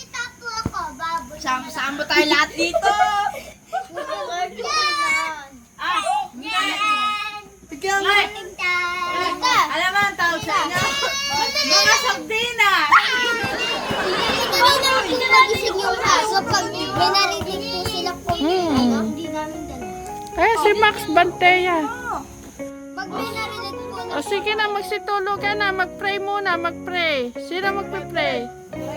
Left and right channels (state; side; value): identical; both; correlation 1.00